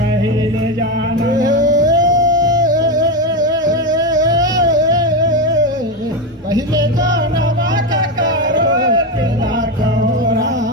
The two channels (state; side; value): normal; both; correlation 0.12